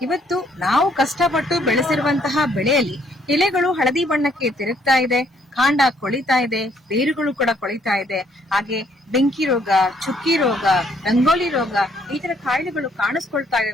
ಇವತ್ತು ನಾವು ಕಷ್ಟಪಟ್ಟು ಬೆಳೆಸಿರುವಂತಹ ಬೆಳೆಯಲ್ಲಿ ಎಲೆಗಳು ಹಳದಿ ಬಣ್ಣಕ್ಕೆ ತಿರುಗ್ತಾ ಇದೆ, ಕಾಂಡ ಕೊಳಿತಾ ಇದೆ, ಬೇರುಗಳು ಕೂಡ ಕೊಳಿತಾ ಇದೆ. ಹಾಗೆ ಬೆಂಕಿ ರೋಗ, ಚುಕ್ಕಿ ರೋಗ, ರಂಗೋಲಿ ರೋಗ ಈ ತರ ಕಾಯಿಲೆಗಳು ಕಾಣಿಸ್ಕೊಳ್ತಾ ಇದೆ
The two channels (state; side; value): normal; both; correlation 0.67